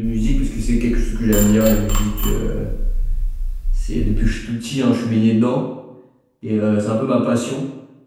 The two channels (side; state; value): both; identical; correlation 1.00